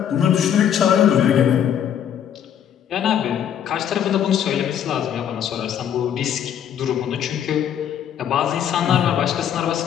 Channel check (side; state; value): right; quieter; 9.3 dB